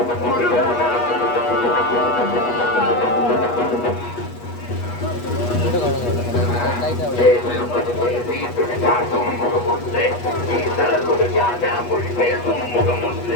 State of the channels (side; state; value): right; late; 8.3 ms